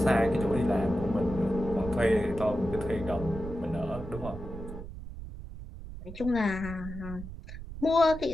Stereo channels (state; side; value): noise; right; rumble, 11 dB below the sound